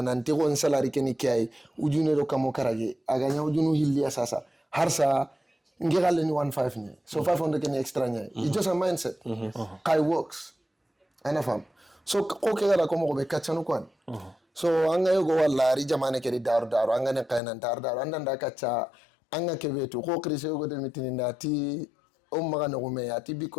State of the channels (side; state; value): right; drops out; at 17.4 s